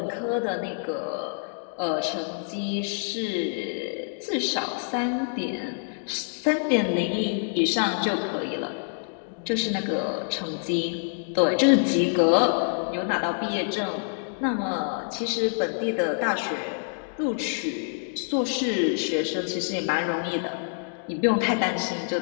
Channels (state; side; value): silent; right; digital silence